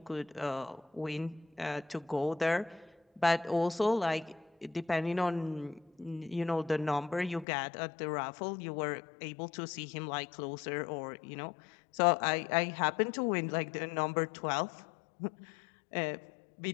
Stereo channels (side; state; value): right; drops out; at 7.5 s